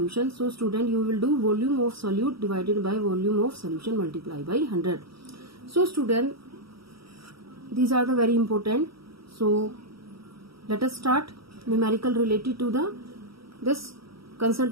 so student, you will do volume of solute divided by volume of solution multiply by 100. So student, these are the very important. So let us start numerical related to this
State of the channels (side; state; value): left; late; 0.75 ms